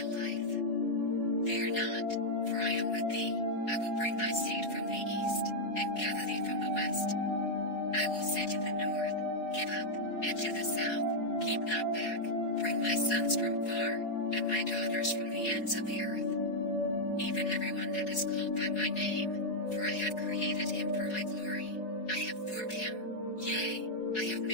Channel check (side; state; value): right; late; 4.7 ms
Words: life. Fear not, for I am with thee. I will bring thy seed from the east, and gather thee from the west. I will say to the north, Give up, and to the south, Keep not back. Bring my sons from far, and my daughters from the ends of the earth. Even everyone that is called by my name, for I have created him for my glory. I have formed him, yea, I have